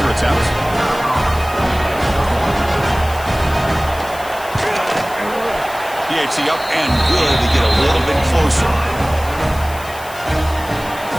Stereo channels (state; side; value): noise; left; hiss, 17 dB below the sound